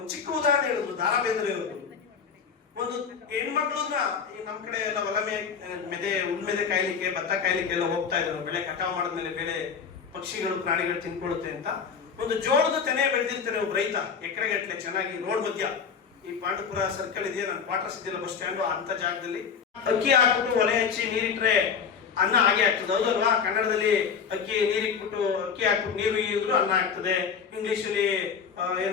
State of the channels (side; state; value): right; quieter; 6.4 dB